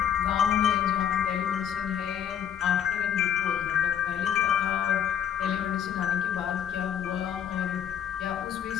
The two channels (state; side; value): quieter; right; 9.1 dB